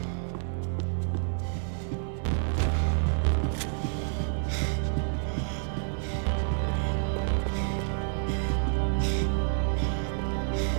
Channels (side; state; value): left; silent; 59 dB below the other